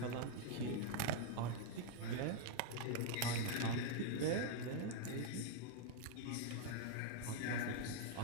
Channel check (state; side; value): different; both; correlation 0.00